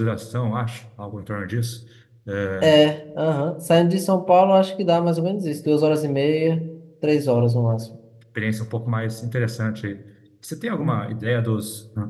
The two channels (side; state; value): both; identical; correlation 1.00